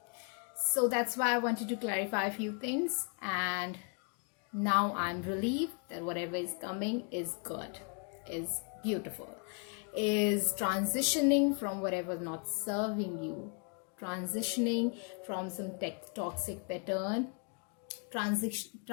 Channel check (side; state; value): right; quieter; 38.7 dB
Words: So that's why I wanted to clarify a few things, and now I'm relieved that whatever is coming is good, is beautiful, is transitioning from whatever not serving you, transitioning from some toxic pattern,